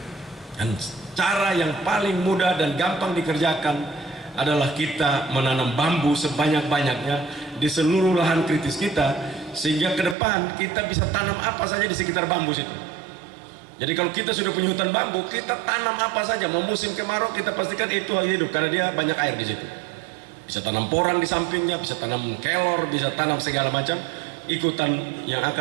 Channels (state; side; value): drops out; left; at 10.2 s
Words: Dan cara yang paling mudah dan gampang dikerjakan adalah kita menanam bambu sebanyak-banyaknya di seluruh lahan kritis kita, sehingga ke depan kita bisa tanam apa saja di sekitar bambu situ. Jadi kalau kita sudah punya hutan bambu, kita tanam apa saja. Mau musim kemarau kita pastikan itu hidup karena dia banyak air di situ. Bisa tanam porang di sampingnya, bisa tanam kelor, bisa tanam segala macam ikutan yang